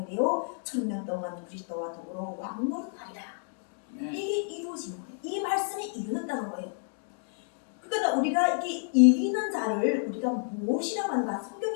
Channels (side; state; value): right; silent; digital silence